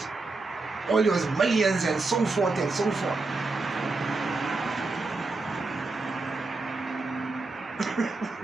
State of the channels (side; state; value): left; quieter; 3.5 dB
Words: All those millions and so forth and so forth.